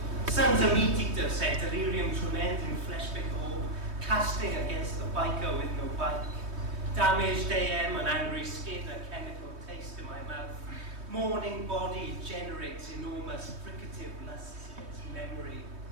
Sun's a meat eater, said delirium tremendum, flesh-big orb, casting against the biker with no bike. Damaged AM, an angry skin, a chemical taste in my mouth. Morning body generates enormous fricative lusts against memory.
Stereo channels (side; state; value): left; late; 3.2 ms